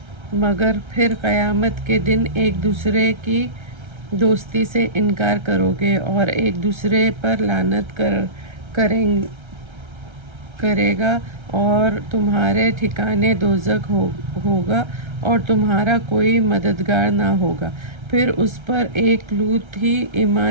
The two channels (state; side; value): late; left; 1.3 ms